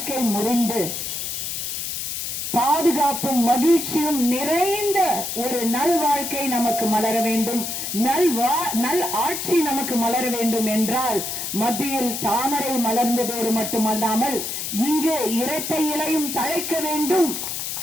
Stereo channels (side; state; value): left; noise; hiss, 4 dB below the sound